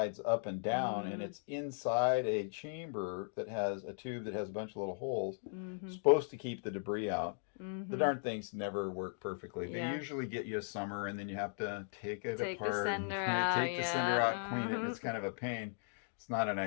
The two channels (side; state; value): right; silent; digital silence